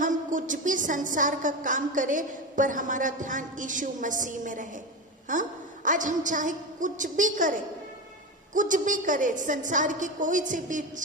कुछ भी संसार का काम करें पर हमारा ध्यान यीशु मसीह में रहे। हाँ, आज हम चाहे कुछ भी करें, संसार की कोई सी भी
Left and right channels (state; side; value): normal; both; correlation 0.19